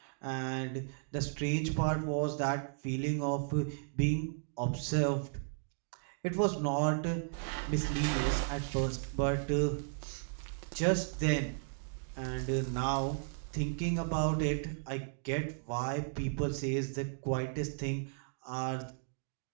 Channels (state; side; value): silent; left; digital silence